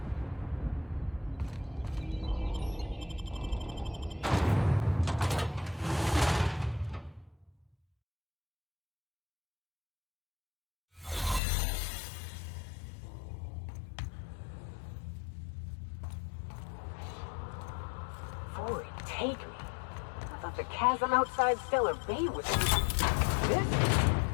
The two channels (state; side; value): drops out; right; at 11.4 s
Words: Forward, take me. I thought the chasm outside Stellar Bay was...